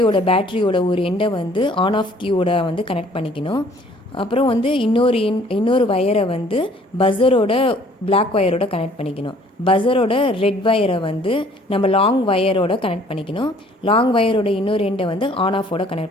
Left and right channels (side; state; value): both; normal; correlation 0.57